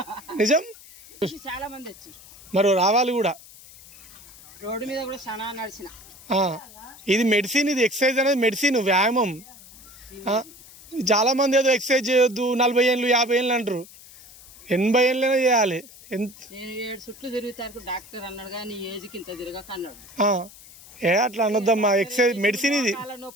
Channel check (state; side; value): noise; left; hiss, 20 dB below the sound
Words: నిజం, చాలా మంది వచ్చారు. మరి రావాలి కూడా. రోడ్డు మీద కూడా చాలా నడిచిన. ఇది మెడిసిన్, ఇది ఎక్సర్సైజ్ అనేది మెడిసిన్, వ్యాయామం. చాలా మంది ఏదో ఎక్సర్సైజ్ చేయొద్దు 40 ఏళ్ళు 50 ఏళ్ళు అంటారు. 80 ఏళ్ళైనా చేయాలి. నేను 7 చుట్లు తిరుగుతాను డాక్టర్ అన్నాడు కానీ ఏజ్కి ఇంత తిరగక అన్నాడు. అట్లా అనొద్దమ్మా, ఎక్సర్సైజ్ మెడిసిన్ ఇది.